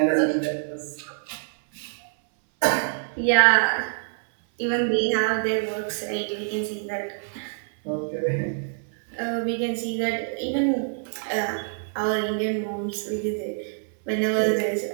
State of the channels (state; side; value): silent; left; 61 dB below the other